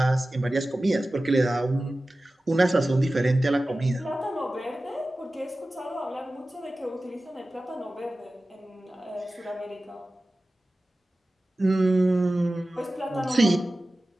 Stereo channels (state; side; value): normal; both; correlation 0.96